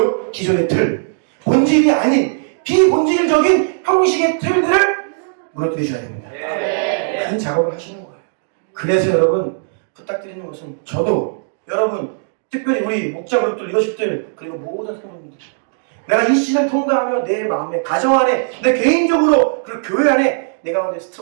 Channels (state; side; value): silent; left; digital silence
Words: 기존의 틀. 본질이 아닌 비본질적인 형식의 틀들을 무너뜨리셔야 됩니다. 그 작업을 하시는 거예요. 그래서 여러분 부탁드리는 것은 저도 여러분 특별히 우리 목자 그룹들 리더십들 그리고 모든 성도님들 내가 이 시즌을 통과하며 내 마음에 가정 안에 내 개인적으로 그리고 교회 안에 내 가운데